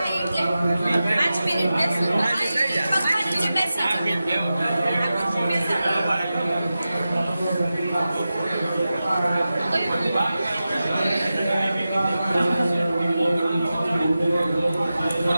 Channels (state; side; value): inverted; both; correlation -0.93